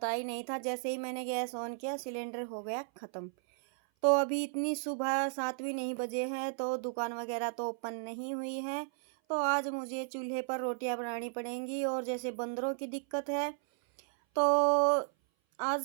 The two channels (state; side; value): silent; left; 55 dB below the other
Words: ही नहीं था। जैसे ही मैंने गैस ऑन किया सिलेंडर हो गया ख़त्म। तो अभी इतनी सुबह 7 भी नहीं बजे हैं, तो दुकान वगैरह तो ओपन नहीं हुई है। तो आज मुझे चूल्हे पर रोटियां बनानी पड़ेंगी। और जैसे बंदरों की दिक्कत है तो आज